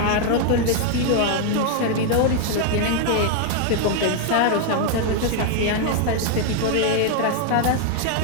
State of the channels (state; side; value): different; both; correlation 0.00